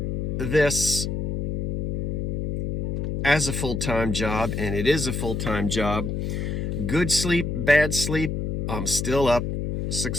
this as a full-time job, and it is a full-time job. Good sleep, bad sleep, I'm still up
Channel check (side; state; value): left; noise; hum, 1 dB below the sound